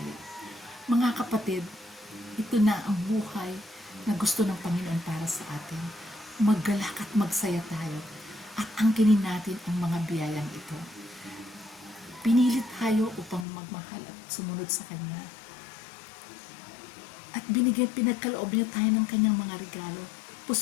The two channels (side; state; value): right; drops out; at 13.5 s